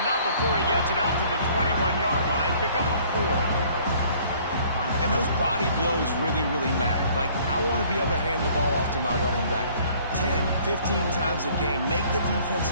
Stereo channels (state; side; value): inverted; both; correlation -0.56